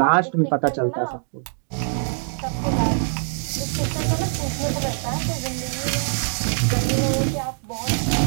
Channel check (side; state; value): left; silent; 63 dB below the other